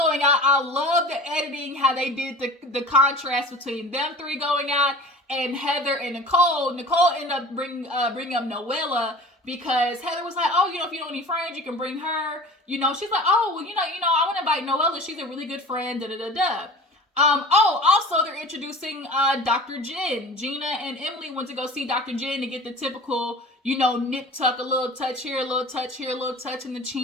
out, I love the editing, how they did the contrast between them three going out and Heather and Nicole. Nicole ended up bringing up Noella because Heather was like, oh, if you don't need friends, you can bring her. She's like, oh, well, I want to invite Noella. She's a really good friend, da-da-da-da. Also, they're introducing Dr. Jen. Gina and Emily went to go see Dr. Jen to get the typical, nip tuck, a little touch here, a little touch here, a little touch in the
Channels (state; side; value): normal; both; correlation 0.40